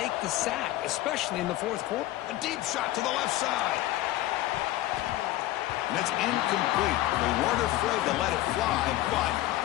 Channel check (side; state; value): right; quieter; 15.8 dB